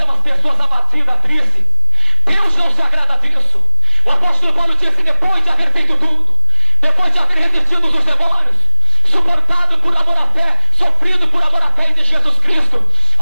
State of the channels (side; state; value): both; inverted; correlation -0.54